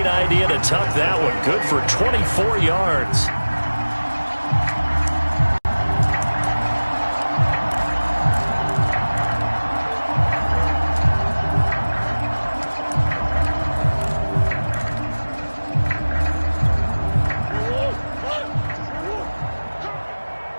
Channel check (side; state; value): both; inverted; correlation -1.00